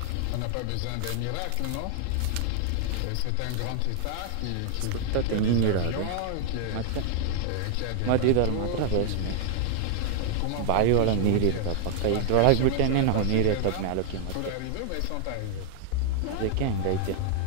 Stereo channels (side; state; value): both; different; correlation 0.00